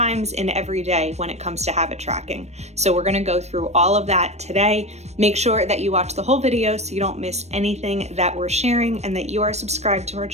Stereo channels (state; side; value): late; left; 0.32 ms